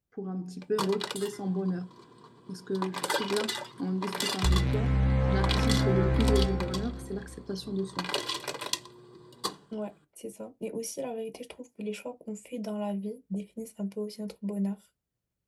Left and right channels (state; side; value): identical; both; correlation 1.00